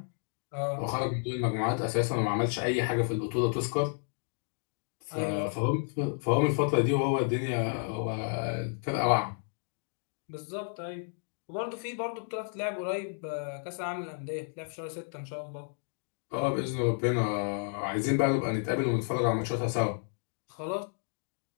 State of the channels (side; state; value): right; silent; 57 dB below the other